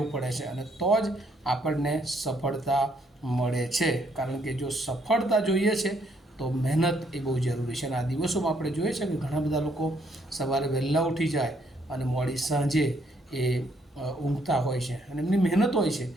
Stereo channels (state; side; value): normal; both; correlation 0.70